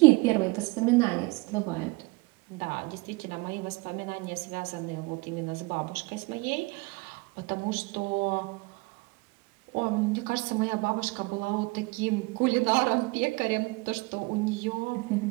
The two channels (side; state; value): left; quieter; 25.6 dB